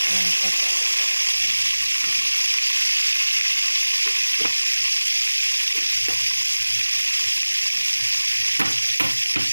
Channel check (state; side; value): inverted; both; correlation -1.00